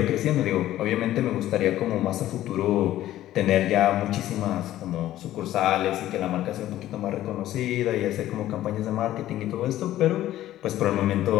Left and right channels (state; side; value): quieter; right; 13.8 dB